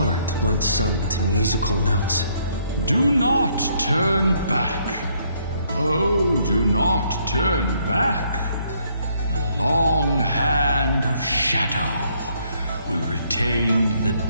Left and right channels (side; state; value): both; inverted; correlation -0.69